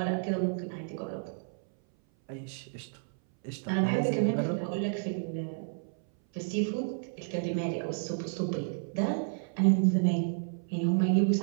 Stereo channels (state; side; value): silent; left; 57 dB below the other